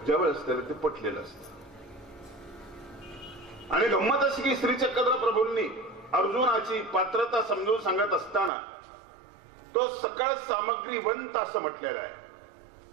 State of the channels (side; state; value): left; drops out; at 8.5 s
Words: ज्यावेळेस त्याला ते पटलेलं असतं. आणि गंमत अशी की श्रीचक्र प्रभूंनी अर्जुनाची पात्रता समजून सांगत असताना तो सकळ सामग्रीवंत असं म्हटलेला आहे.